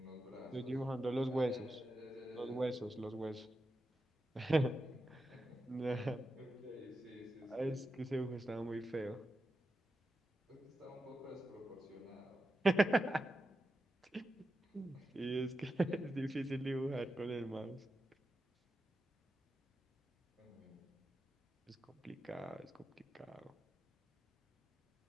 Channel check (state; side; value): normal; both; correlation 0.89